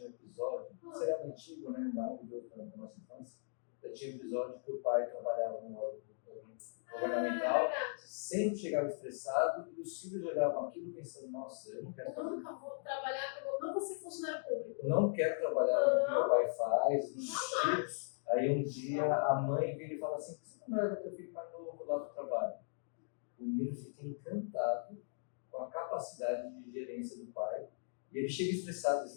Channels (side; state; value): right; silent; digital silence